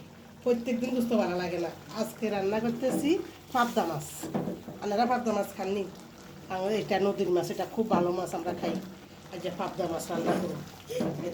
প্রত্যেকদিন গুস্ত ভালো লাগে না, আজকে রান্না করতেছি পাবদা মাছ। আপনারা পাবদা মাছ খাননি? আমাদের এটা নদীর মাছ, এটা খুব ভালো মাছ, আমরা খাই। আজ যে পাবদা মাছ রান্না করুন,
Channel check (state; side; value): identical; both; correlation 1.00